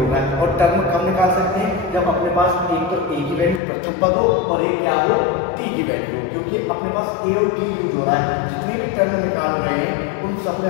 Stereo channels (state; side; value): drops out; right; at 3.6 s